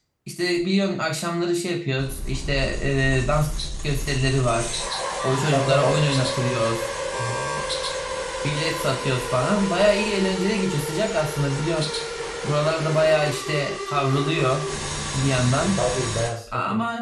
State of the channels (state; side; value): identical; both; correlation 1.00